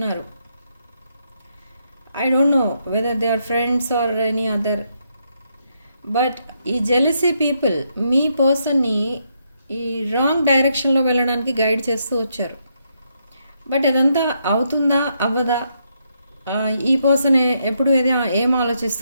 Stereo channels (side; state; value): both; inverted; correlation -0.78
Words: I don't know whether they are friends or any other, but ఈ జెలసీ పీపుల్ మీ పర్సన్ని ఈ రాంగ్ డైరెక్షన్లో వెళ్ళడానికి గైడ్ చేస్తూ వచ్చారు. బట్ అదంతా అవుతుందా అవ్వదా, ఈ పర్సన్ ఎప్పుడు ఏం